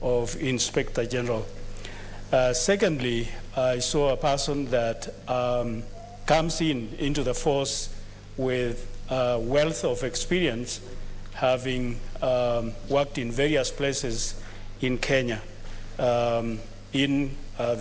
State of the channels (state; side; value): identical; both; correlation 1.00